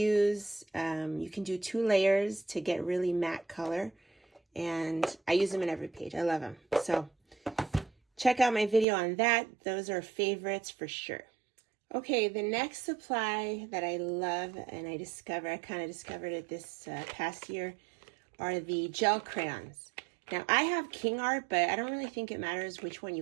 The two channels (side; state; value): left; drops out; at 8.8 s